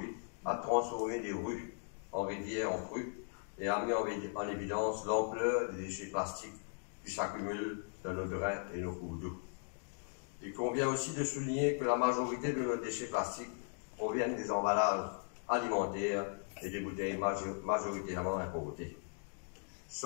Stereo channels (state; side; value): silent; right; 52 dB below the other